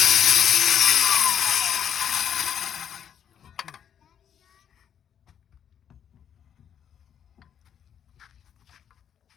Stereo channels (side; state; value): right; quieter; 8.8 dB